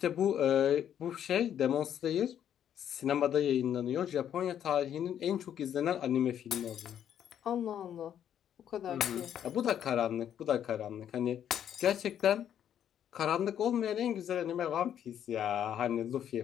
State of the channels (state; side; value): quieter; right; 9.8 dB